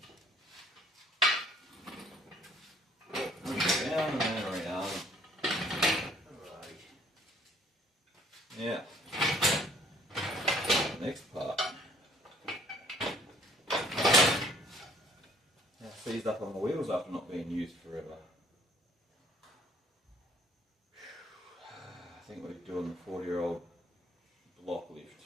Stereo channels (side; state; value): both; normal; correlation 0.59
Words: Down and then around. Yeah. Next part. Now seized up on the wheels after not being used forever. I think we're doing the 40-year-old block lift.